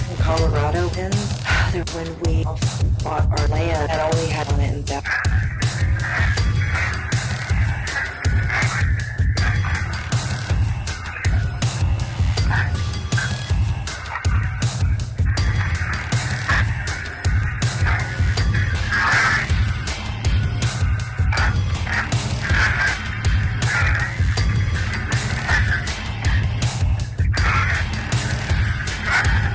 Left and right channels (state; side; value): identical; both; correlation 1.00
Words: Colorado. And when we bought our land, that only had on it in depth.